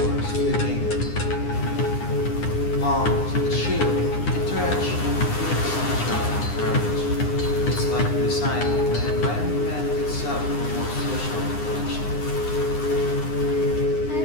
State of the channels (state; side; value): late; right; 9.8 ms